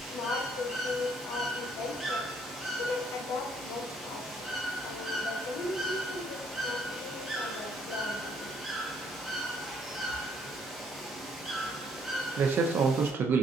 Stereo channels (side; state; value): both; normal; correlation 0.67